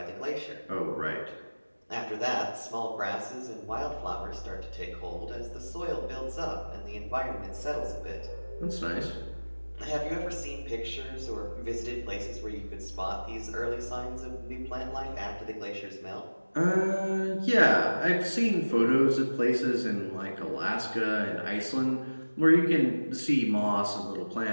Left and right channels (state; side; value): inverted; both; correlation -1.00